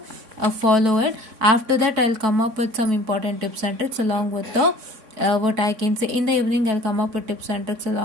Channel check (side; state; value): left; late; 3.6 ms